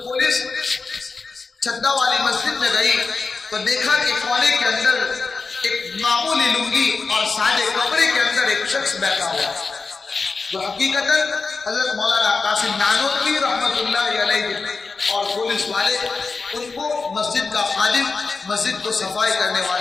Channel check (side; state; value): right; quieter; 4.3 dB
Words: پولیس چھتا والی مسجد میں گئی تو دیکھا کہ کونے کے اندر ایک معمولی لنگی اور سادے کپڑے کے اندر ایک شخص بیٹھا ہوا جو حقیقتاً حضرت مولانا قاسم نانوتوی رحمت اللہ علیہ اور پولیس والے ان کو مسجد کا خادم, مسجد کو صفائی کرنے